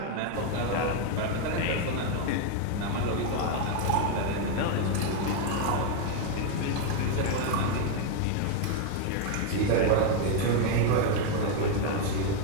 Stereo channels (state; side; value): different; both; correlation 0.01